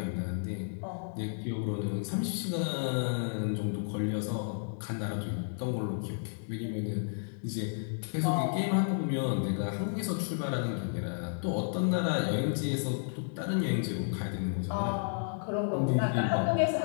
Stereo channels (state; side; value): silent; right; digital silence